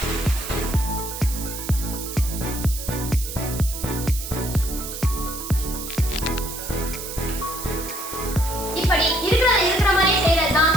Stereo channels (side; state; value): right; noise; hiss, 8 dB below the sound